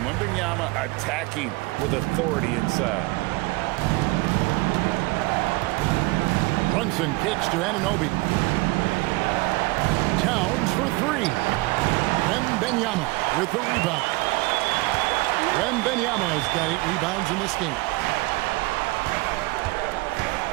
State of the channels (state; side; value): quieter; left; 23.2 dB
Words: Wembanyama attacking with authority inside. Brunson kicks to Anunoby. Towns for three. Wembanyama with the rebound. Wembanyama has got 8 rebounds in this game.